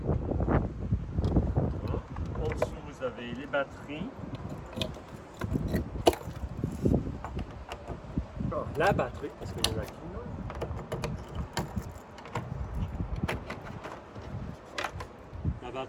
Voilà. En dessous, vous avez les batteries. la batterie, parce qu'il y en a qu'une. La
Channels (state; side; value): identical; both; correlation 1.00